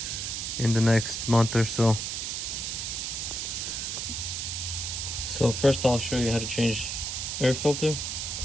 in the next month or so. So first I'll show you how to change air filter.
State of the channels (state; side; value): noise; right; hiss, 3 dB below the sound